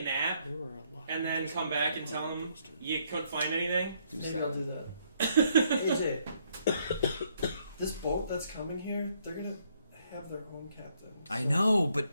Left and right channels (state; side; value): inverted; both; correlation -0.71